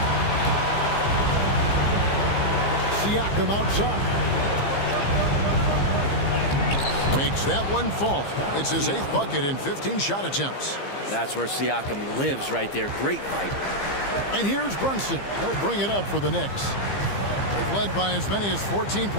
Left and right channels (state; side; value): late; right; 15 ms